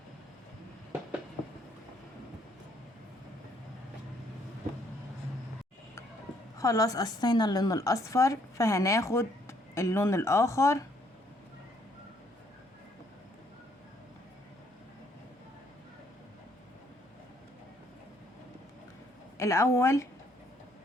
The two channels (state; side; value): normal; both; correlation 0.68